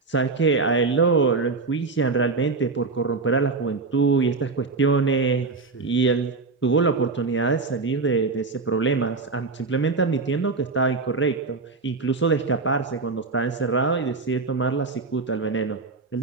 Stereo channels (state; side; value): quieter; left; 4.1 dB